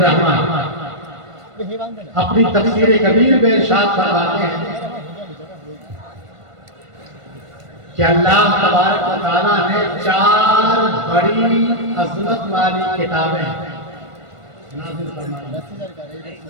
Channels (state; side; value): late; left; 1.5 ms